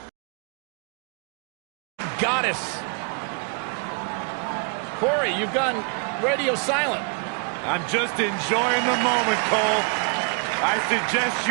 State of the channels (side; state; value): left; quieter; 38.5 dB